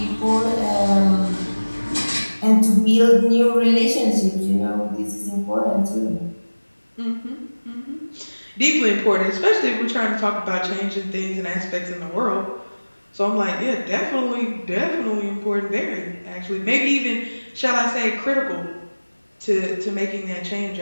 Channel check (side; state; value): both; inverted; correlation -1.00